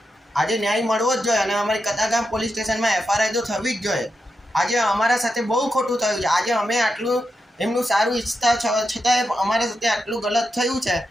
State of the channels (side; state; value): both; normal; correlation 0.87